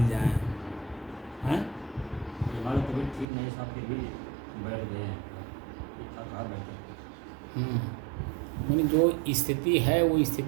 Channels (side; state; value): left; drops out; at 3.2 s